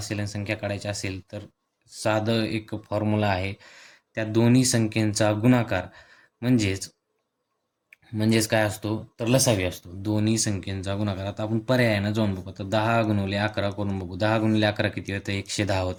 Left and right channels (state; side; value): identical; both; correlation 1.00